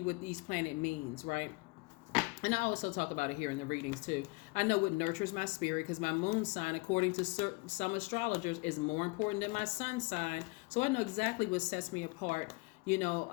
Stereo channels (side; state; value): right; quieter; 27.0 dB